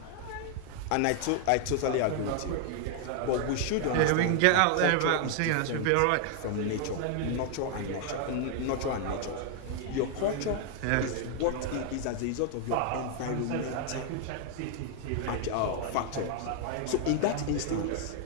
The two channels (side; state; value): both; different; correlation 0.00